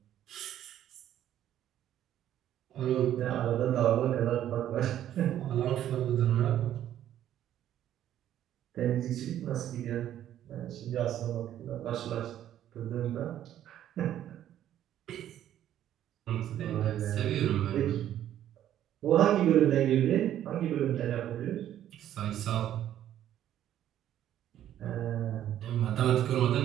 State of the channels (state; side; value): quieter; left; 11.5 dB